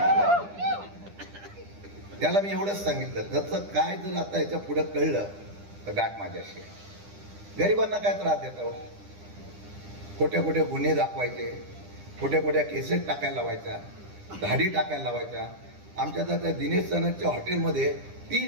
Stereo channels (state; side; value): late; left; 9.9 ms